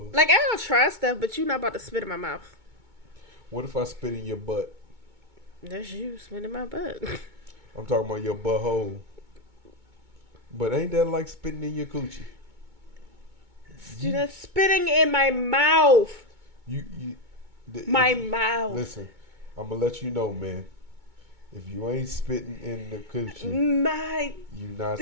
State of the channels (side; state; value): left; late; 2.2 ms